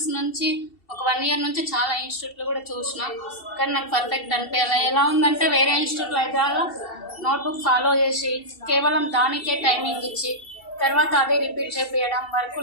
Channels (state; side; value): late; right; 2.7 ms